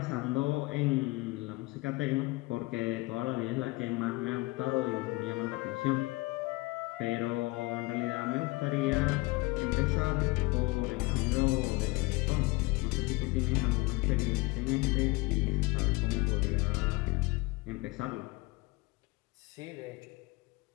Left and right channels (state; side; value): quieter; right; 23.1 dB